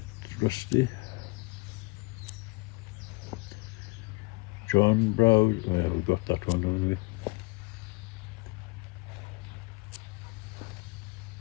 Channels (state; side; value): quieter; right; 25.2 dB